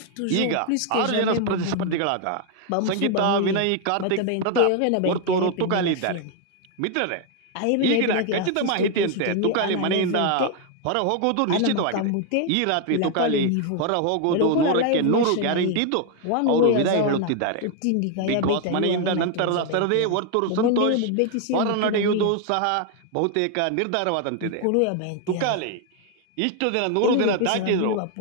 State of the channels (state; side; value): different; both; correlation 0.01